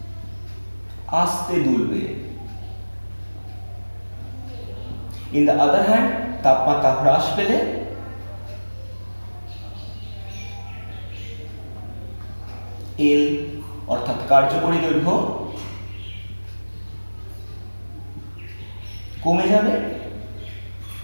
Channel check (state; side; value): inverted; both; correlation -1.00